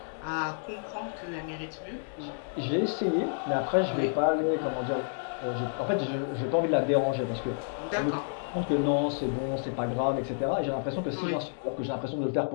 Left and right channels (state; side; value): silent; right; digital silence